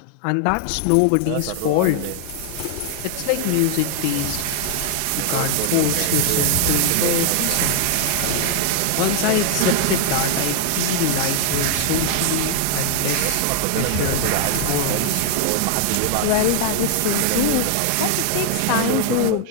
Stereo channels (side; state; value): both; different; correlation 0.00